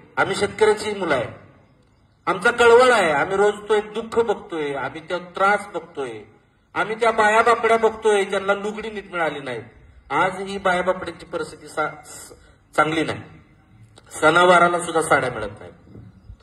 आम्ही शेतकऱ्याची मुलं आहे, आमचा कळवळ आहे, आम्ही रोज तो एक दुःख बघतोय, आम्ही त्या त्रास बघतोय, आम्ही त्या बायाबापड्या बघतोय ज्यांना लुगडी नीट मिळाली नाही. आज ही बायाबापड्याची परिस्थिती चांगली नाही, सणावाराला सुद्धा साड्या मिळत नाही,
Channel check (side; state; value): both; identical; correlation 1.00